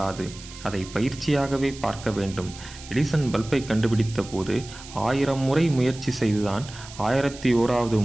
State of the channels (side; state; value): right; noise; hiss, 16 dB below the sound